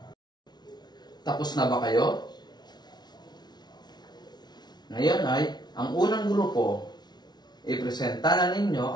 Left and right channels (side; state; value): right; late; 0.20 ms